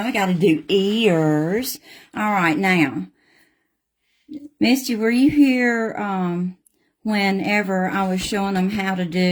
I got to do ears. All right, now, Misty, were you here whenever I was showing them how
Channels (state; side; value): identical; both; correlation 1.00